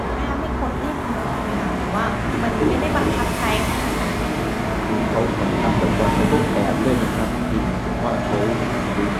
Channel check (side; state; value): both; identical; correlation 1.00